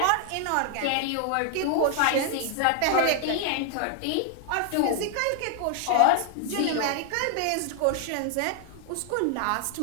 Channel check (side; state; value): both; different; correlation 0.00